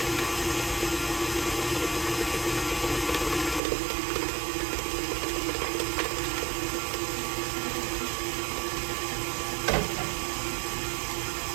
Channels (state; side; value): drops out; left; at 3.6 s